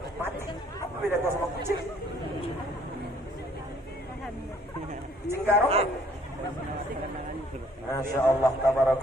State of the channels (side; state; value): both; normal; correlation 0.61